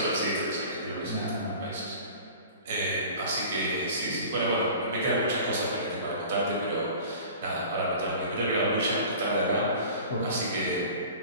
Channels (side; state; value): both; inverted; correlation -0.41